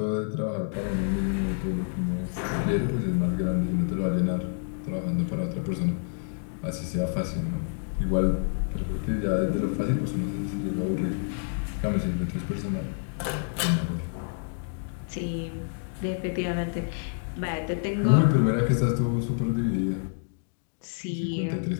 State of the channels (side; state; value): right; silent; digital silence